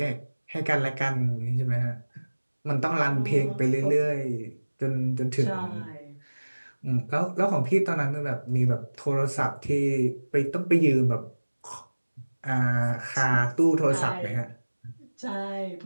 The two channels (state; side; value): inverted; both; correlation -1.00